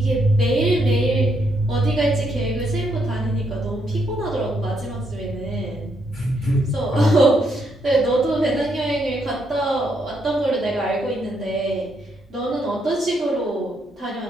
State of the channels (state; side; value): normal; both; correlation 0.76